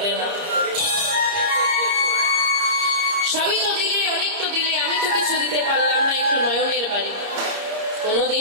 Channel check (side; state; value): left; late; 30 ms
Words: না। সবই তো দিলে, অনেক তো দিলে, আমি তো কিছু দিতে পারলাম না, একটু নয়নের বাড়ি,